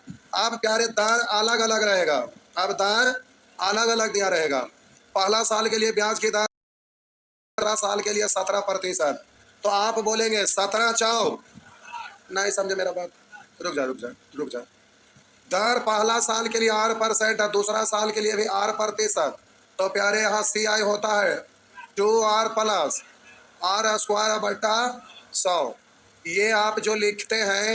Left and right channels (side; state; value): both; identical; correlation 1.00